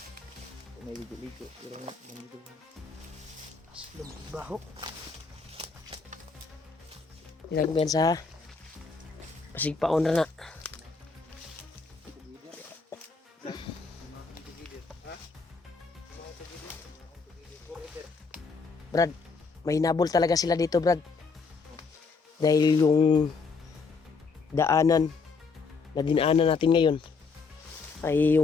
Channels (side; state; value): right; quieter; 4.6 dB